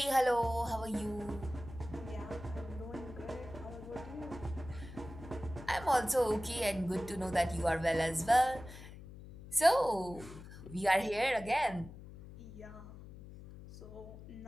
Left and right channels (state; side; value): noise; left; hum, 15 dB below the sound